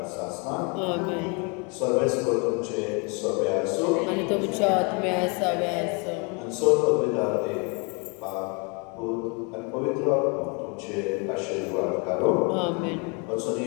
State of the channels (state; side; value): quieter; right; 32.7 dB